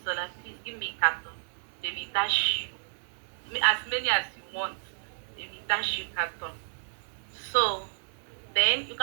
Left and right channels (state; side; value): silent; left; digital silence